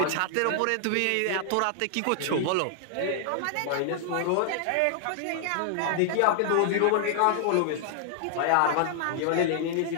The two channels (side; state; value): both; different; correlation -0.01